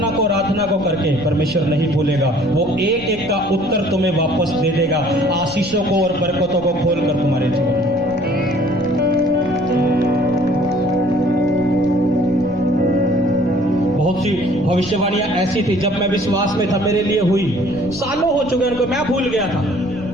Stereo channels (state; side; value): noise; left; rumble, 17 dB below the sound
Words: को, आराधना को करके, परमेश्वर नहीं भूलेगा। वो एक एक का उत्तर तुम्हें वापस दे देगा, आशीषों को और बरकतों को खोल कर तुम्हारे जीवन में। बहुत सी भविष्यवाणियां ऐसी थी, जब मैं विश्वास में था मेरे लिए हुई, सालों हो चुके उनको, मैं भूल गया था,